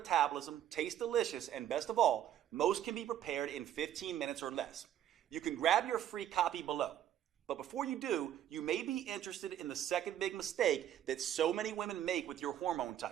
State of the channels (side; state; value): left; quieter; 11.1 dB